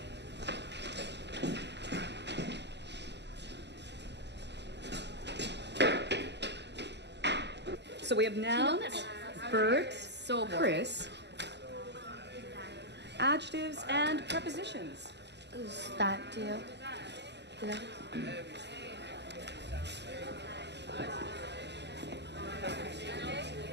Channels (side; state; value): left; late; 0.50 ms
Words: So we have now Bert, Chris, adjectives and prepositions. Is that deal? Yeah.